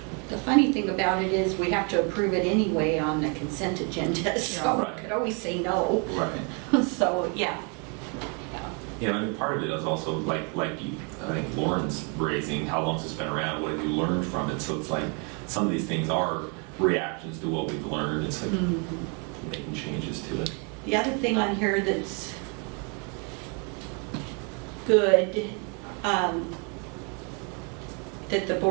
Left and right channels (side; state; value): left; quieter; 35.8 dB